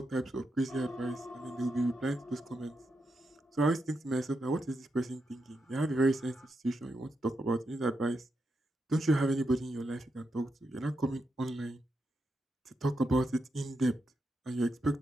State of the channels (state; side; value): normal; both; correlation 0.85